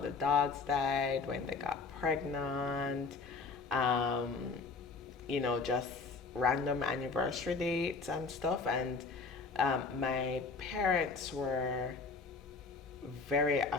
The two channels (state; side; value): quieter; right; 4.4 dB